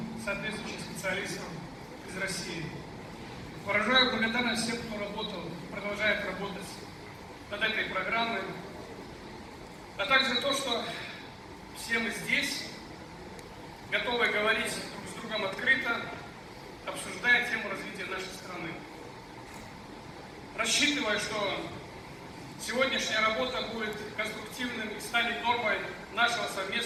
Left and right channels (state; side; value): identical; both; correlation 1.00